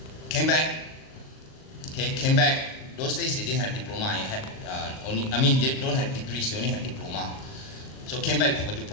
Came back. Those days they didn't have diploma. They don't have degrees. They only have diploma. So came back with a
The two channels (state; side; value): late; right; 38 ms